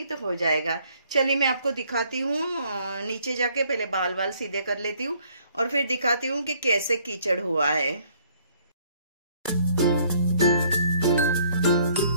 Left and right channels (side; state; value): both; inverted; correlation -0.63